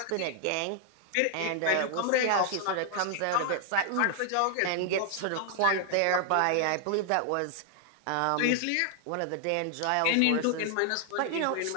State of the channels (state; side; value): different; both; correlation 0.00